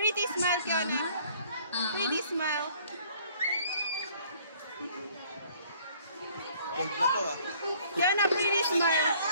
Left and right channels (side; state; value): both; inverted; correlation -0.58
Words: smile, Kiana. Pretty smile. Kiana, pretty smile.